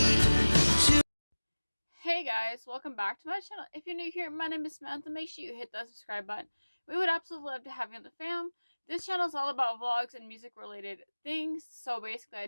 Hey guys, welcome back to my channel. If you're new here, my name is Samantha. Make sure you hit that subscribe button. We would absolutely love to have you on the fam. This channel is all about vlogs and music related things. So basically I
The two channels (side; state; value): both; inverted; correlation -1.00